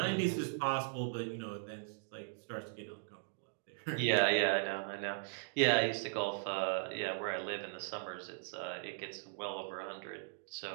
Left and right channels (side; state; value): left; silent; digital silence